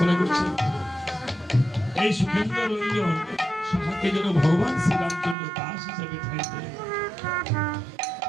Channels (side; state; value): left; drops out; at 5.4 s